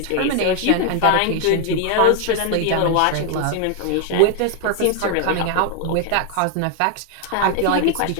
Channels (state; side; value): different; both; correlation 0.00